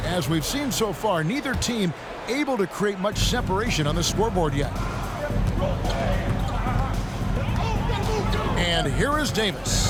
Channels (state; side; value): identical; both; correlation 1.00